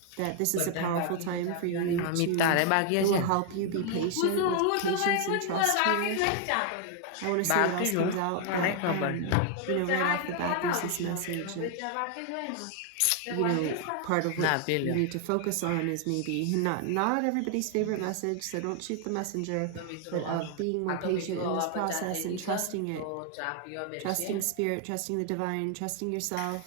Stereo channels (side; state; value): both; different; correlation 0.00